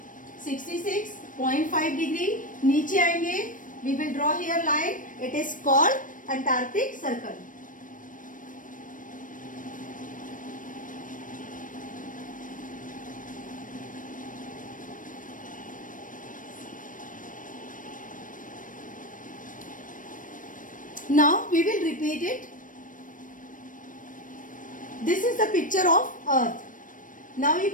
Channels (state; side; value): late; right; 0.38 ms